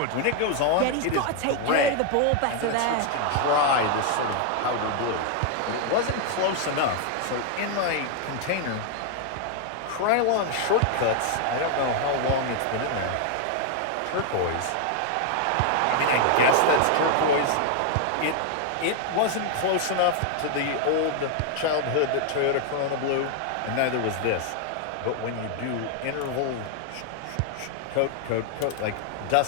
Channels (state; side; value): different; both; correlation 0.00